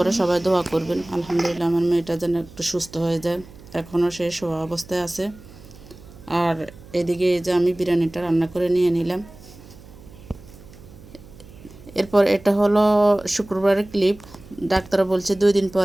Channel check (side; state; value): right; noise; hum, 20 dB below the sound